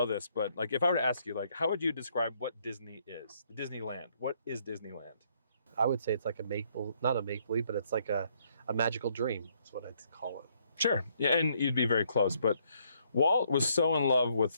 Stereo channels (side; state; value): both; inverted; correlation -0.70